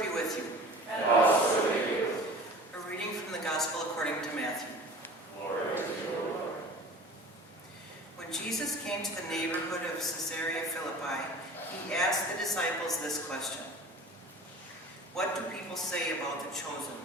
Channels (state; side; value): normal; both; correlation 0.41